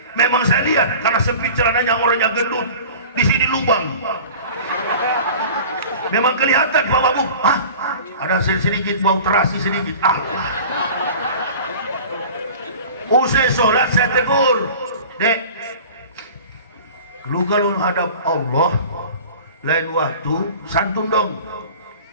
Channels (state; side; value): inverted; both; correlation -0.41